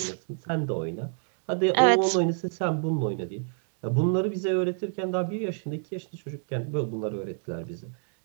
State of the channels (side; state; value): left; silent; 55 dB below the other